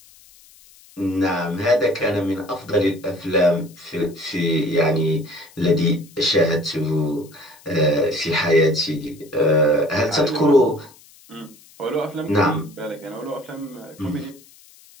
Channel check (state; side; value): noise; left; hiss, 25 dB below the sound